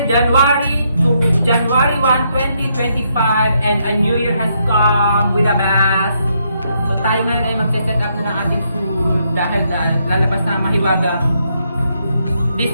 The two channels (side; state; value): both; inverted; correlation -0.76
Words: January 1, 2025 and a new year has come with a bath. So tayo ngayon ay magsa-set up na ng ating food dahil lalabas na mahiwagang